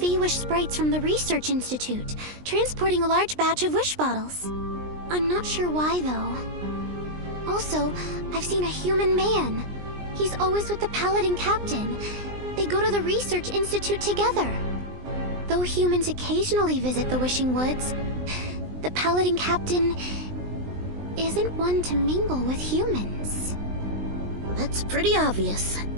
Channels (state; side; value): late; left; 20 ms